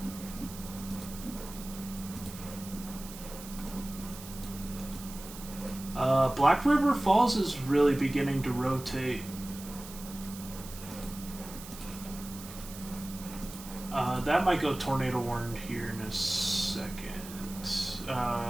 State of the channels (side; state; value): right; noise; hiss, 14 dB below the sound